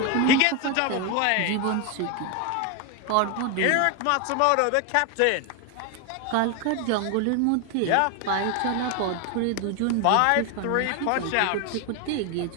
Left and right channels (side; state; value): both; different; correlation 0.01